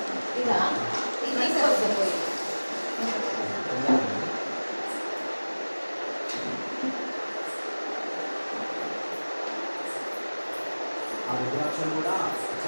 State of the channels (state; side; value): inverted; both; correlation -1.00